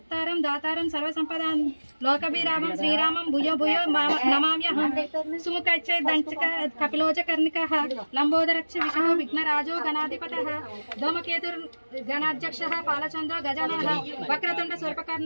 దాతారం సర్వసంపదాం లోకభిరామం శ్రీరామం భూయో భూయో నమామ్యహం సుముఖైచ్చే దంచక కపిలోచ కర్ణికః లంబోదరచ్చ విష్ణు విఘ్నరాజో గణాధిపతః ధూమకేతుర్ గణాధ్యక్షః పాలచంద్రో గజాననః వక్రతుండ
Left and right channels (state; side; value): inverted; both; correlation -1.00